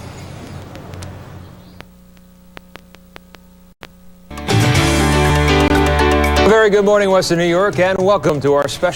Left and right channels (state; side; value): identical; both; correlation 1.00